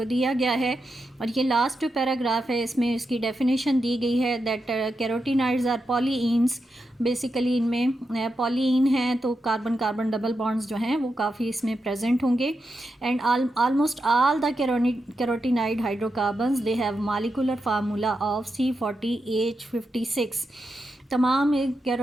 दिया गया है और ये लास्ट जो पैराग्राफ है इसमें इसकी डेफिनेशन दी गई है दैट कैरोटीनाइड्स आर पॉलीइन्स। बेसिकली इनमें पॉलीइन हैं तो कार्बन कार्बन डबल बॉन्ड्स जो हैं वो काफ़ी इसमें प्रेजेंट होंगे। And almost all the carotenoid hydrocarbons they have molecular formula of C40H56। तमाम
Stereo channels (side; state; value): both; normal; correlation 0.87